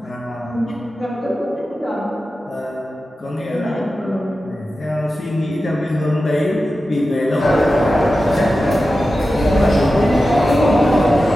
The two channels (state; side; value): normal; both; correlation 0.93